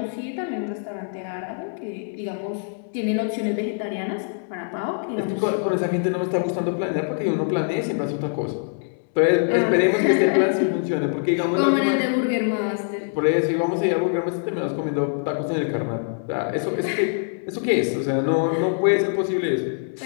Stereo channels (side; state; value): right; silent; 63 dB below the other